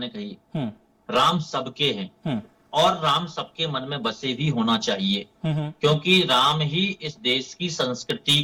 कही, राम सबके हैं और राम सबके मन में बसे भी होना चाहिए, क्योंकि राम ही इस देश की संस्कृति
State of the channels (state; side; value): identical; both; correlation 1.00